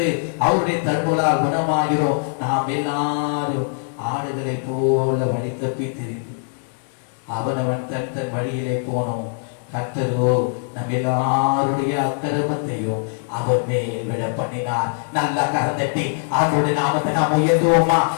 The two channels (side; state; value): right; silent; digital silence